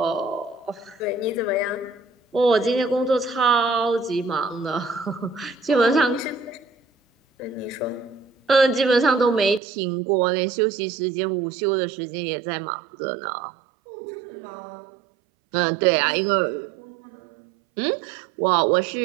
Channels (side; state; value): left; drops out; at 9.6 s